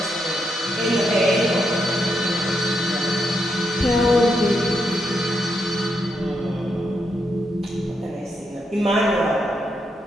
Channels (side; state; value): both; normal; correlation 0.80